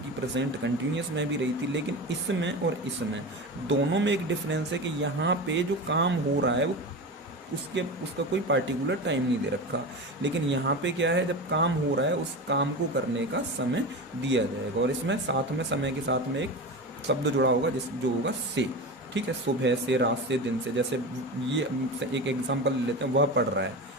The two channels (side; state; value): both; normal; correlation 0.25